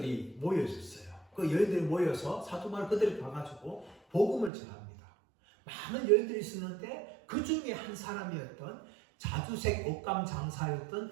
모여 있었어요. 그 여인들이 모여서 사도 바울 그들이 가가지고 복음을 전합니다. 많은 여인들이 있었는데 그 중에 한 사람이었던 자주색 옷감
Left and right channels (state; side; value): drops out; left; at 4.5 s